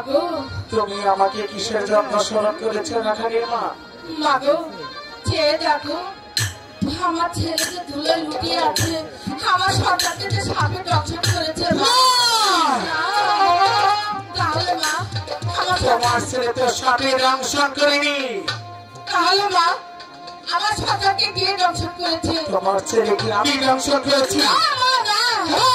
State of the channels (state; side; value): identical; both; correlation 1.00